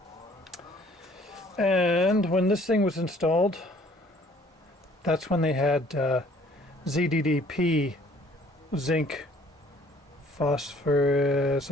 and when this thing was installed, that's when they had ZDDP, zinc, phosphorus.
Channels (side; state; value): both; normal; correlation 0.57